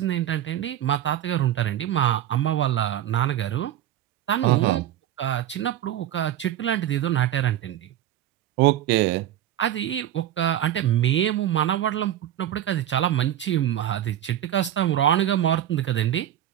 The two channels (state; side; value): quieter; left; 11.7 dB